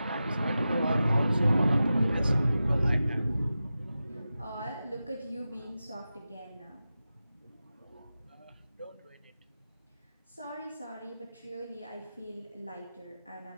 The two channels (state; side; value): inverted; both; correlation -0.93